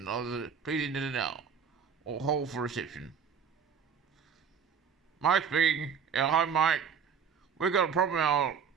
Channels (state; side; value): quieter; left; 6.8 dB